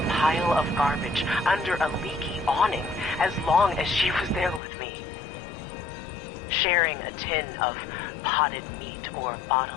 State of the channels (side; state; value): right; drops out; at 4.6 s